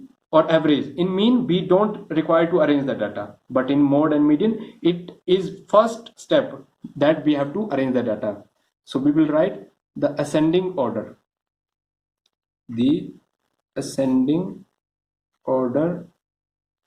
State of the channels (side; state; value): both; identical; correlation 1.00